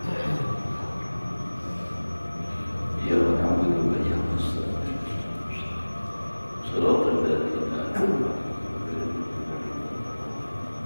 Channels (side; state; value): both; inverted; correlation -1.00